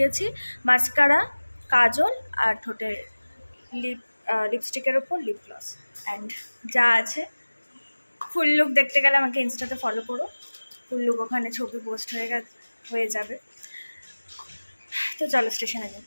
মাস্কারা, কাজল আর ঠোঁটে লিপস্টিকের ওপর লিপ গ্লস অ্যান্ড যা আছে। ফুল লুক দেখতে গেলে আমাকে ইনস্টাতে ফলো করো, ফুল লুক ওখানে ছবি পোস্ট হয়ে যাবে। তো চলো স্টেশনে যাই।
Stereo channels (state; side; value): inverted; both; correlation -1.00